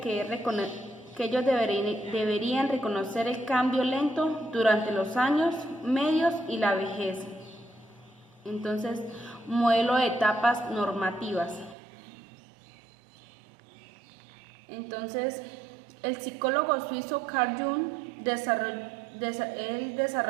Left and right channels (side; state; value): left; drops out; at 11.8 s